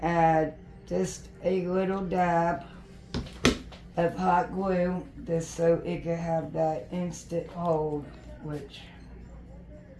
add just a little dab of hot glue, just so it can have that instant hold, which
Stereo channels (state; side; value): identical; both; correlation 1.00